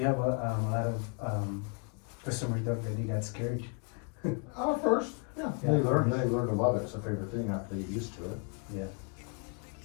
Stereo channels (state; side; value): quieter; right; 38.3 dB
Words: a lot of customers that really got scared. First, yeah. They learn to love it. It's a favorite thing after they get used to it. Yeah.